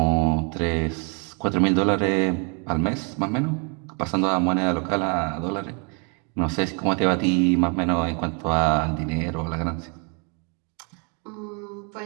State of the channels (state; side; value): quieter; left; 36.1 dB